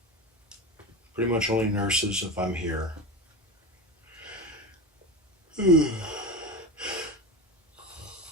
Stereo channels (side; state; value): both; normal; correlation 0.24